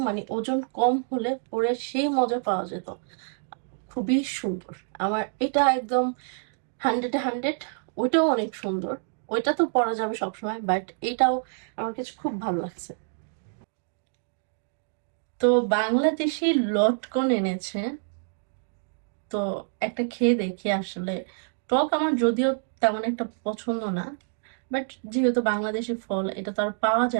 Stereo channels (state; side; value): silent; left; digital silence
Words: মানে ওজন কম হলে পরে সেই মজা পাওয়া যেত। খুবই সুন্দর, আমার এটা একদম 100-এ 100। ওইটাও অনেক সুন্দর, ওইটা তো পরা যাবে সবসময়, বাট এটাও আমার কাছে খুব ভালো লাগছে। তো বাংলাদেশি লটকন এনেছে, তো একটা খেয়ে দেখি আসলে। টক আমার যদিও তেমন একটা পছন্দ না, বাট যেহেতু বাংলাদেশি ফল এটা তো আর পাওয়া